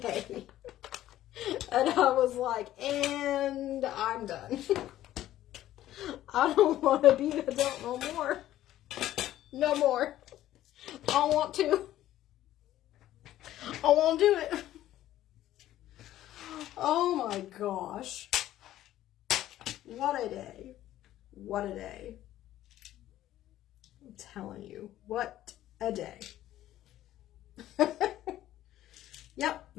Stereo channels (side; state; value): right; quieter; 13.5 dB